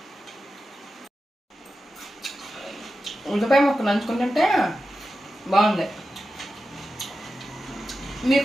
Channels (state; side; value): normal; both; correlation 0.92